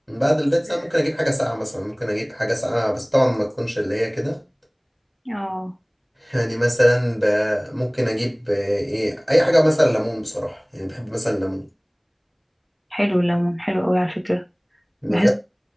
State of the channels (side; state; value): both; identical; correlation 1.00